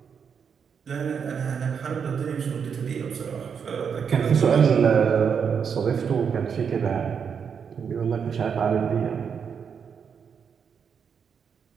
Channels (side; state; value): left; quieter; 6.8 dB